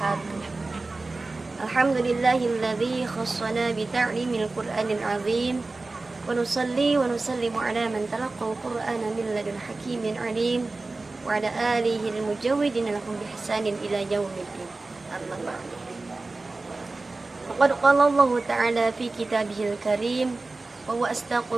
Alhamdulillahilladzi khassana bi ta'limil Qur'anil azim. Wa nusalli wa nusallimu ala man talaqqal Qur'ana min ladun hakimin alim wa ala alihi al-mujawwidin lahum bi ihsanin ila yaumiddin. Amma ba'du. Faqad qala Allah ta'ala fi kitabihil karim wa huwa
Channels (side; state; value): left; quieter; 3.4 dB